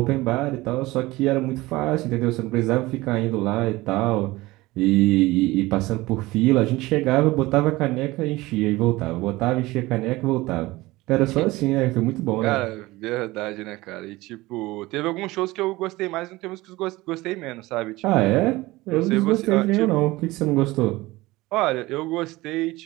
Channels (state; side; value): quieter; left; 19.8 dB